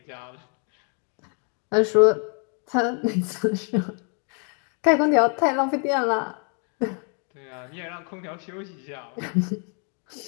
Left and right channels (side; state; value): right; quieter; 38.9 dB